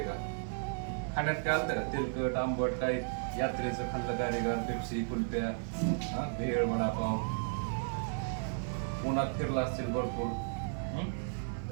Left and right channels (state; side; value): silent; left; 55 dB below the other